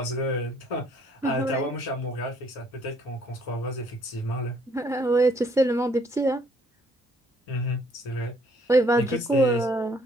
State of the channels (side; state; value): both; normal; correlation 0.64